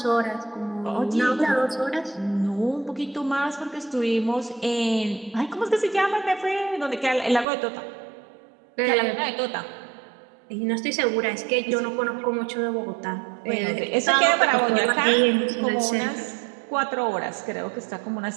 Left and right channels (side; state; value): left; drops out; at 7.5 s